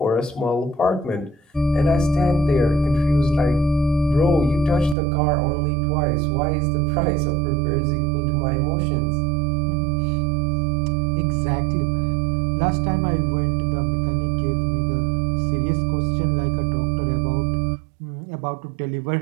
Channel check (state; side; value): drops out; left; at 5.0 s